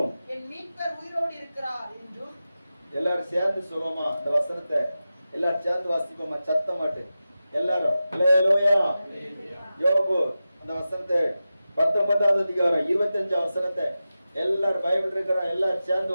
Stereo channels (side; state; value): both; inverted; correlation -0.93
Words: எல்லாரும் சேர்ந்து சொல்லுவோமா இந்த வசனத்தை? எல்லாரும் சேர்ந்து வாசிப்போமா சத்தமாட்டு எல்லாரும்? அல்லேலூயா. யோபு அந்த வசனத்தை 19வது அதிகாரம் 25 வசனத்தை எல்லாரும் பைபிள் இருக்கிற எல்லாரும் சேர்ந்து